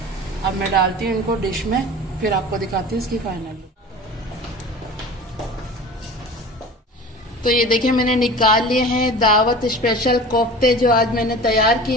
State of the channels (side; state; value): both; normal; correlation 0.37